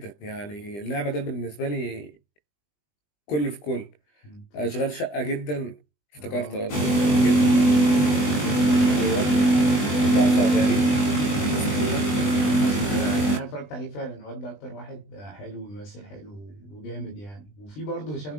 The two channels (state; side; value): late; right; 20 ms